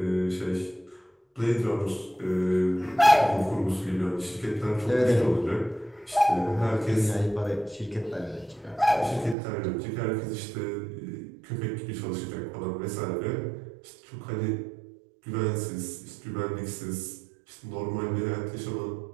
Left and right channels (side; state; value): left; drops out; at 9.3 s